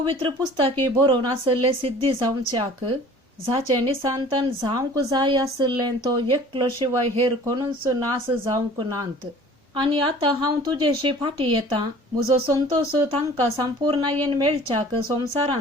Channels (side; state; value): both; normal; correlation 0.47